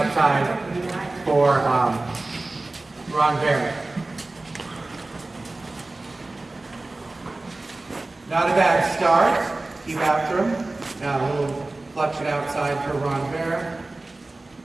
for renvers. Not a bad start. Keep after him. Now a little flexion outside for renvers.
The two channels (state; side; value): quieter; left; 3.0 dB